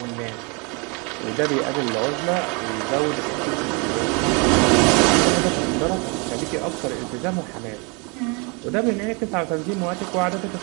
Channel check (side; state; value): left; quieter; 30.6 dB